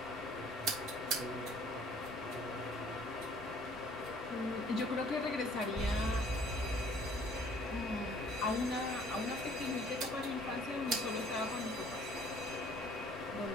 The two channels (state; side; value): normal; both; correlation 0.56